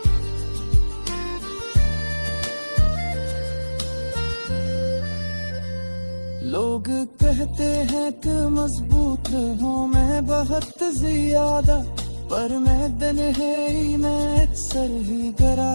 लोग कहते हैं कि मजबूत हूँ मैं बहुत ज्यादा, पर मैं दिन है ही मैं अक्सर ही गिरा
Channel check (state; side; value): inverted; both; correlation -1.00